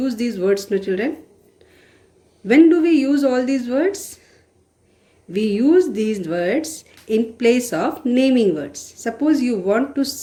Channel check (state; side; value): identical; both; correlation 1.00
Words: these words, no children. When do we use all these words? We use these words in place of naming words. Suppose you want to